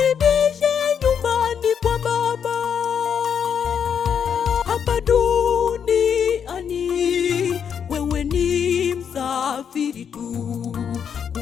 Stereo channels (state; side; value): quieter; right; 7.6 dB